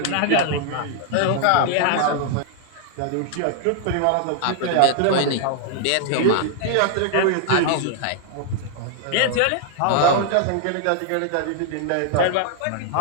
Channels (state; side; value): different; both; correlation 0.00